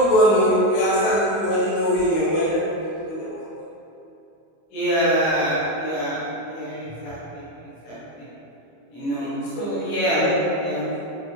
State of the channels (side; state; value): right; late; 25 ms